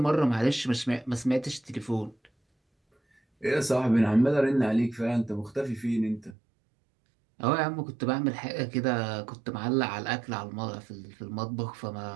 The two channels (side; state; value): left; drops out; at 6.4 s